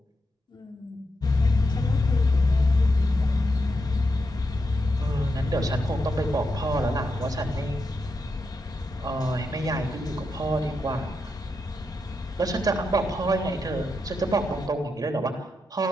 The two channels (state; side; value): normal; both; correlation 0.85